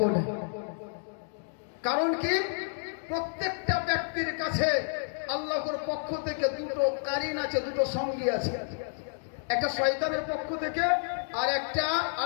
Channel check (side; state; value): right; silent; digital silence